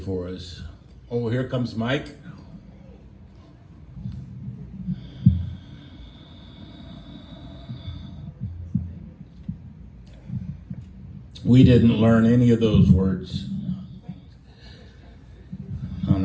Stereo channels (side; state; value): both; identical; correlation 1.00